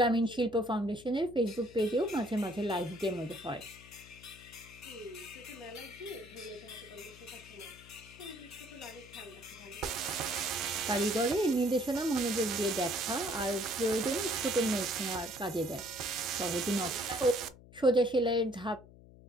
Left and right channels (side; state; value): left; noise; hum, 21 dB below the sound